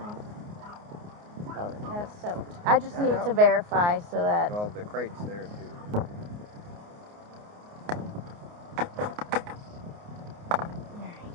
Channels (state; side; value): late; left; 29 ms